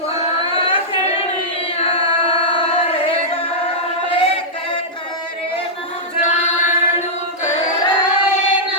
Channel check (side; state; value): both; normal; correlation -0.10